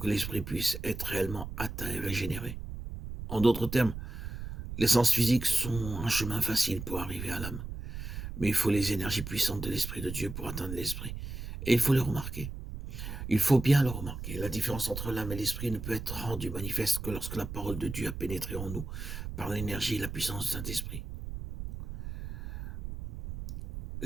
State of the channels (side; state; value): right; noise; rumble, 8 dB below the sound